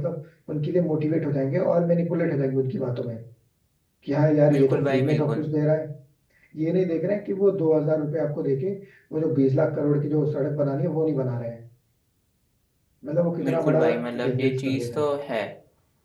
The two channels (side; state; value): both; identical; correlation 1.00